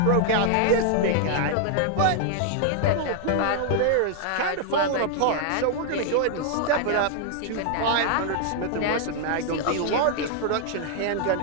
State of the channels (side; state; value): both; different; correlation 0.00